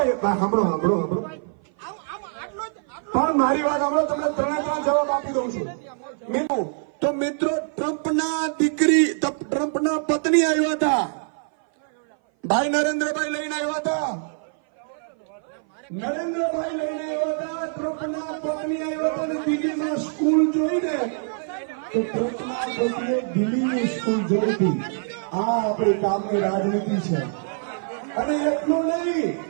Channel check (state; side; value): silent; left; 57 dB below the other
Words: સાંભળો પણ મારી વાત સાંભળો. તમને ત્રણે ત્રણ જવાબ આપી દઉં છું. તો મિત્રો, ટ્રમ્પના પત્ની આવ્યા હતા, ભાઈ નરેન્દ્રભાઈ લઈને આવ્યા હતા. ટ્રમ્પના પત્ની આવ્યા હતા અને દિલ્હીમાં સ્કૂલ જોઈને તો ટ્રમ્પના પત્નીએ દિલ્હીની સ્કૂલ જોઈ હતી. આ આપણી કામની રાજનીતિ છે. અને એટલું નહીં,